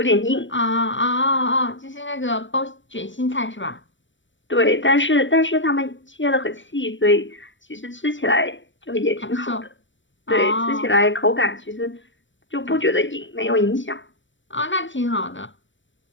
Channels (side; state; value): right; late; 0.55 ms